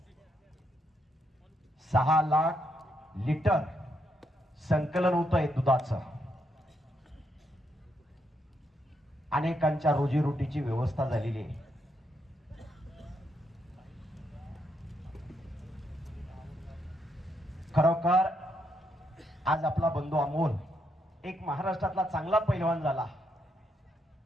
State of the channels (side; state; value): both; normal; correlation 0.78